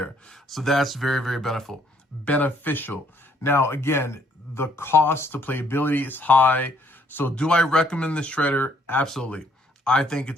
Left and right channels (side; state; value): both; normal; correlation 0.66